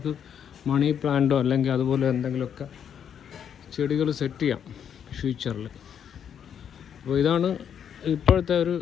മണി പ്ലാന്റോ അല്ലെങ്കിൽ അതുപോലെ എന്തെങ്കിലുമൊക്കെ ചെടികൾ സെറ്റ് ചെയ്യാം ഫ്യൂച്ചറിൽ. അപ്പോൾ ഇതാണ് ഇപ്പോഴത്തെ ഒരു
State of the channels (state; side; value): quieter; right; 8.5 dB